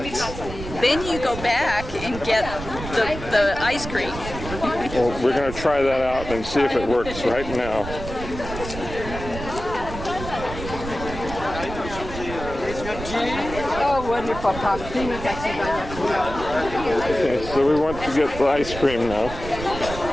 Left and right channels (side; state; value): right; noise; rumble, 9 dB below the sound